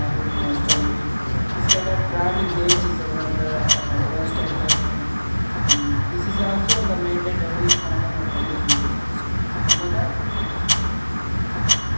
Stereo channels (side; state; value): both; inverted; correlation -1.00